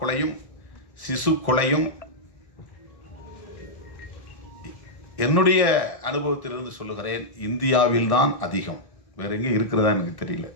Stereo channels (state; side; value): late; right; 1.6 ms